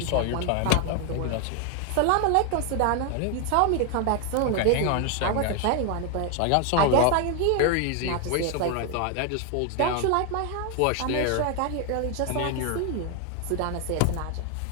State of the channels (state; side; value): different; both; correlation 0.01